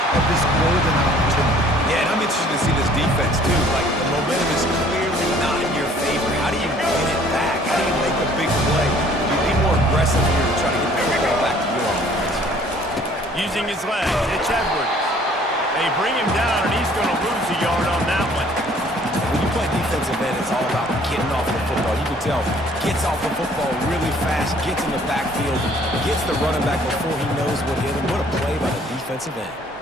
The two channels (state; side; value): normal; both; correlation 0.57